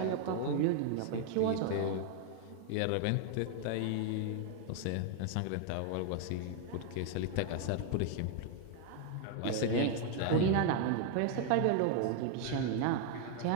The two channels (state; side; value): different; both; correlation 0.00